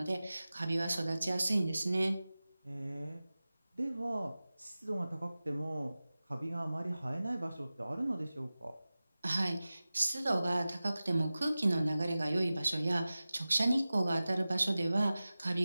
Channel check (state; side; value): inverted; both; correlation -0.96